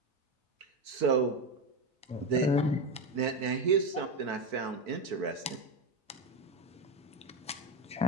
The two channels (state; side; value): normal; both; correlation 0.14